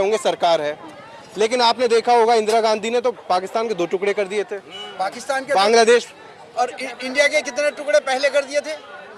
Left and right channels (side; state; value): both; identical; correlation 1.00